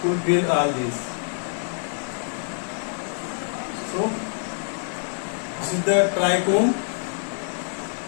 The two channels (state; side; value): silent; right; 61 dB below the other